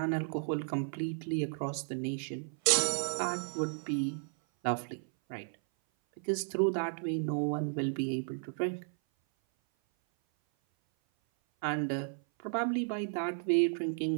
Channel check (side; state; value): left; silent; 55 dB below the other